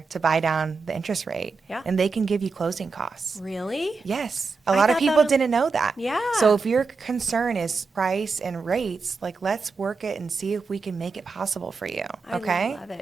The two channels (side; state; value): left; quieter; 4.5 dB